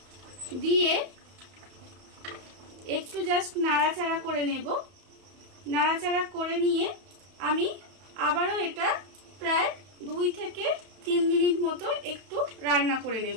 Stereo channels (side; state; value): left; late; 31 ms